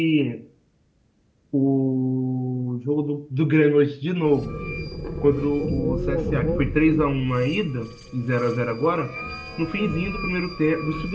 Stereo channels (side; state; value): both; identical; correlation 1.00